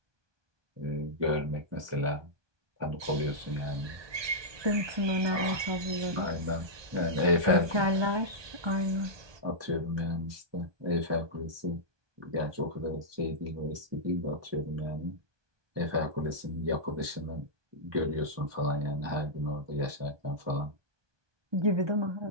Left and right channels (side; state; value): left; late; 1.2 ms